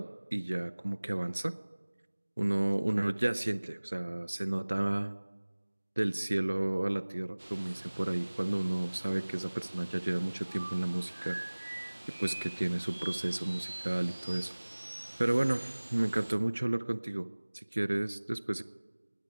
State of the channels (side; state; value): both; inverted; correlation -1.00